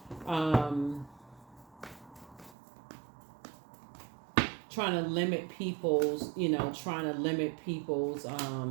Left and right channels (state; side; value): drops out; left; at 2.6 s